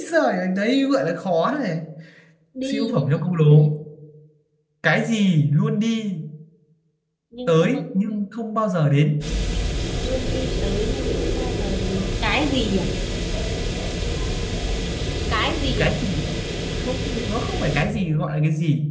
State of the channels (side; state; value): both; identical; correlation 1.00